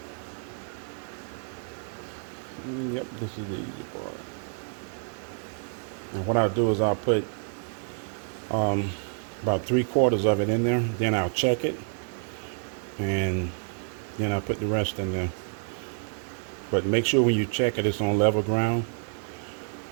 Yep, this is the easy part. And what I'll do is I'll put about 3/4 of it in there. Then I'll check it, and Then I put the rest in there. But make sure when you check it, it's on level ground,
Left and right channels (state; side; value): silent; left; 59 dB below the other